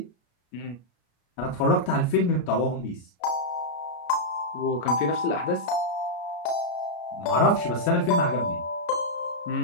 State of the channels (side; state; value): right; late; 33 ms